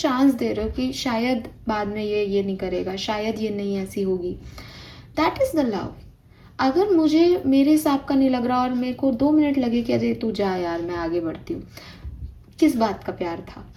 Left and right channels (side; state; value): both; identical; correlation 1.00